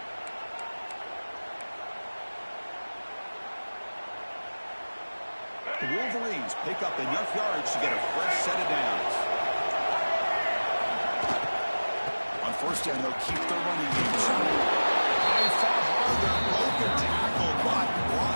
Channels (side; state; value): both; inverted; correlation -1.00